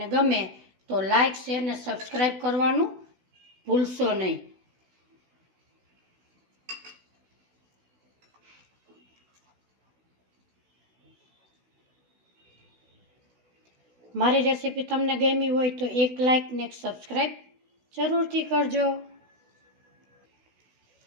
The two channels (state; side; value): late; left; 16 ms